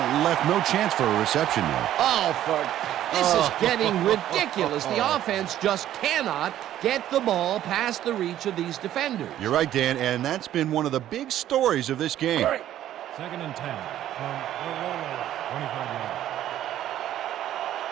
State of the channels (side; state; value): left; quieter; 12.2 dB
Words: left no chance for a reception there. This is getting ridiculous. The offense just cannot get the ball past the reach of these defenders. You're right, Dan, and that's been one of the big stories of this game. 2nd and 10 from the Rollers, 25 yards.